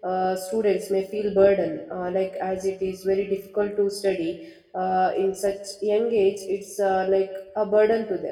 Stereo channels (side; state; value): both; identical; correlation 1.00